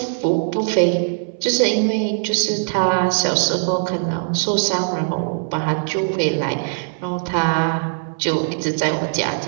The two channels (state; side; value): silent; left; 65 dB below the other